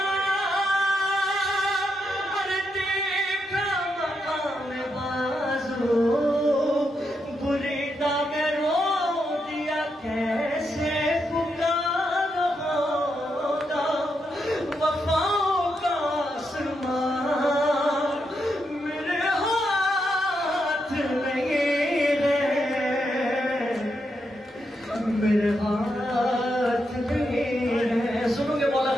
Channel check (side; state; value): both; normal; correlation 0.82